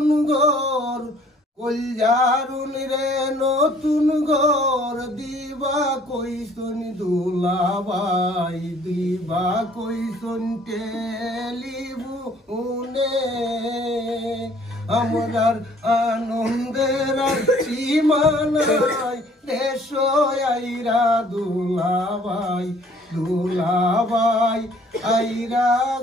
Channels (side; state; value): both; normal; correlation 0.58